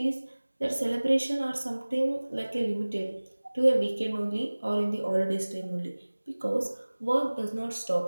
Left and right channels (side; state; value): both; inverted; correlation -1.00